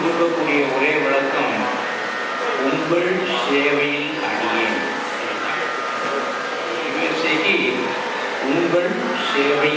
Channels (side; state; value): both; identical; correlation 1.00